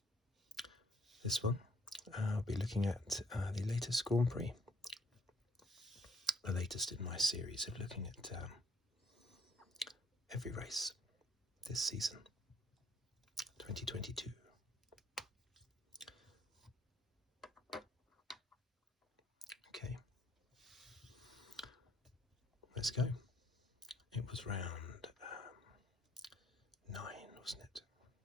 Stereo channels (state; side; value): normal; both; correlation 0.66